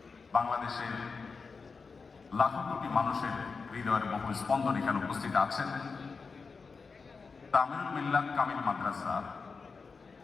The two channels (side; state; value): right; quieter; 4.8 dB